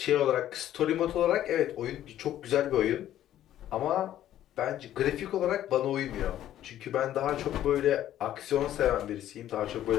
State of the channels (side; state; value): right; quieter; 12.2 dB